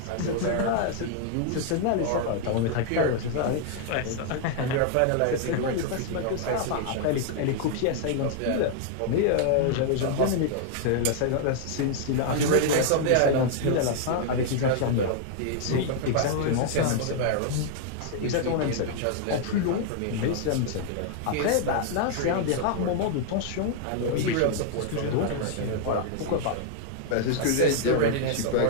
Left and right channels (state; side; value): different; both; correlation 0.00